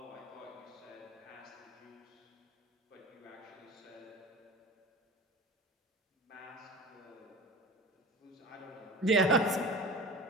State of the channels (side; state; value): both; normal; correlation 0.36